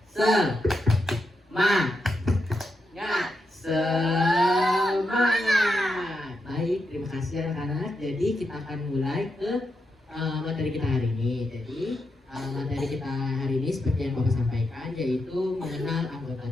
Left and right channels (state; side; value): normal; both; correlation 0.85